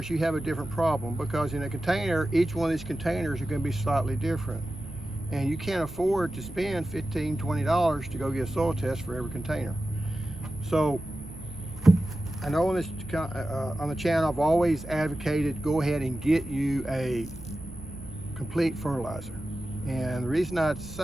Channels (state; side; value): noise; right; rumble, 16 dB below the sound